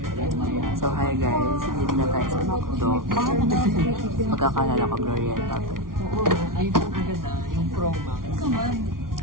So hi guys, dito na tayo sa McDo. Pagkakalala ko Glorieta to. Yung promo.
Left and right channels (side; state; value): left; late; 0.91 ms